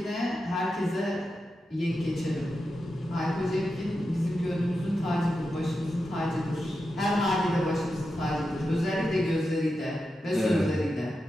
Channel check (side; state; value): both; normal; correlation 0.89